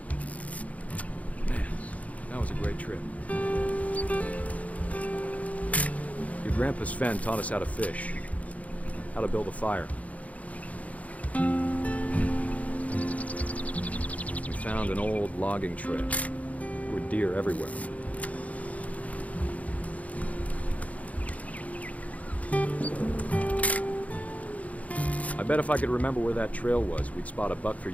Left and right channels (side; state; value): right; late; 0.069 ms